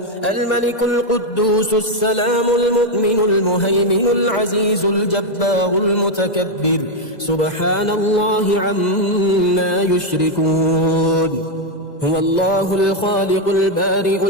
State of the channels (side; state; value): right; late; 2.0 ms